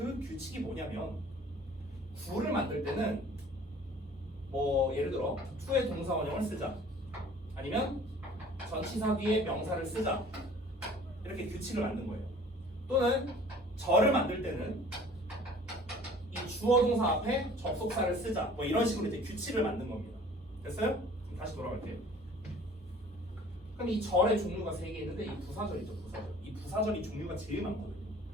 규칙이 뭐냐면 구를 만들 때는 뭐 예를 들어 to의 동사 원형을 쓰자, 아니면 전치사 뒤에 명사를 쓰자, 이렇게 규칙을 만든 거예요. 또는 절을 만들 때는 이 주어 동사 앞에 접속사를 쓰자, 뭐 이런 식으로 이제 규칙을 만든 겁니다. 됐어요? 그럼 다시 돌아갈게요. 그럼 이 절의 종류가 3개 있는데 이 부사절이죠. 부사절. 이 부사절이 종류가 제일 많거든요.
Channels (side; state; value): both; normal; correlation 0.50